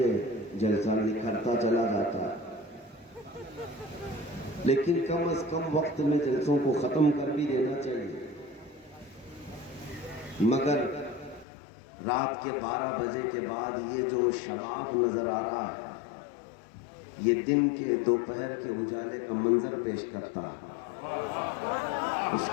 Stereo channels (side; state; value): right; drops out; at 11.5 s